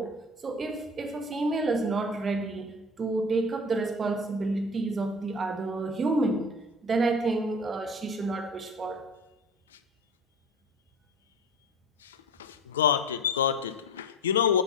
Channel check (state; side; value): normal; both; correlation 0.36